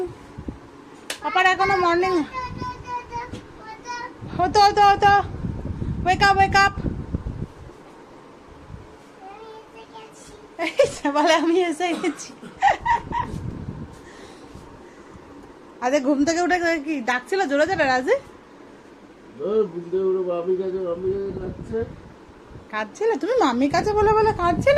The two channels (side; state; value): both; identical; correlation 1.00